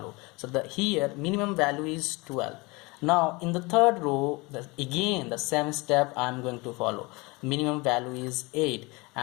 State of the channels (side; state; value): right; quieter; 25.4 dB